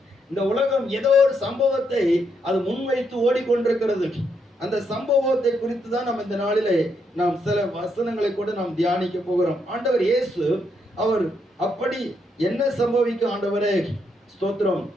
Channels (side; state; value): both; normal; correlation 0.77